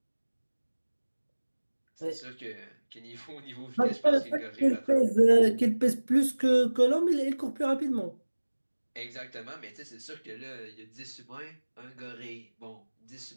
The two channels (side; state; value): both; inverted; correlation -1.00